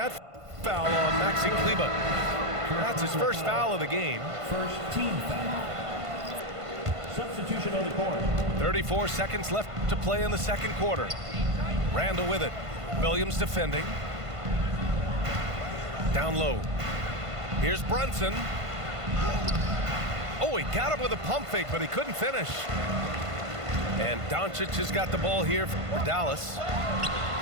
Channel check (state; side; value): late; left; 1.5 ms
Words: foul on Maxi Kleber. That's his first foul of the game. First team foul. Substitution on the court. 34 seconds left to play in the second quarter. Randall with it. Williams defending. Down low. Here's Brunson. Oh, he got him with a pump fake, but he couldn't finish. And Doncic has got the ball here for Dallas.